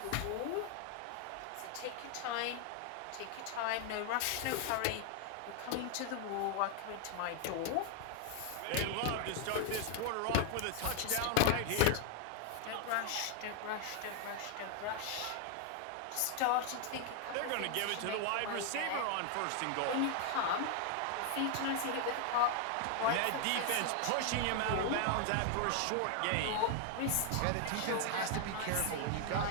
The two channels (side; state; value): both; different; correlation 0.00